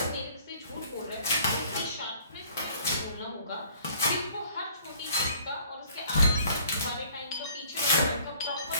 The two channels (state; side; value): inverted; both; correlation -0.54